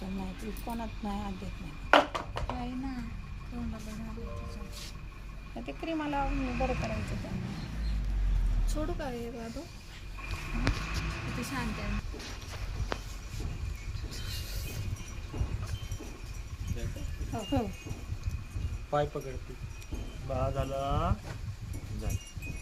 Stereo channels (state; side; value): identical; both; correlation 1.00